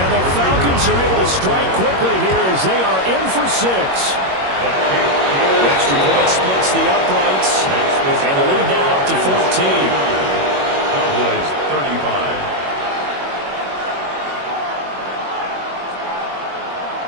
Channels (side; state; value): left; late; 21 ms